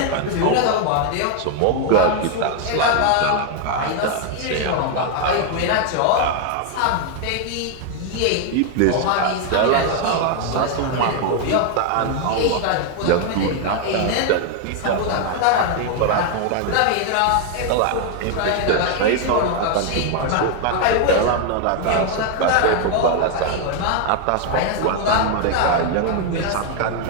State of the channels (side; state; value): both; different; correlation 0.00